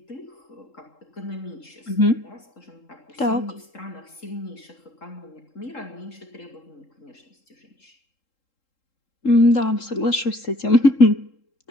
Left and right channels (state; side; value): late; right; 3.7 ms